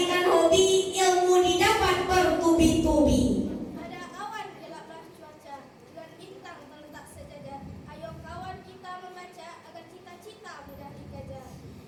hobi, ilmu didapat bertubi-tubi. Ada awan gelaplah cuaca, dengan bintang terletak sejajar. Ayo kawan kita membaca agar cita-cita mudah dikejar.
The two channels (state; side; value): identical; both; correlation 1.00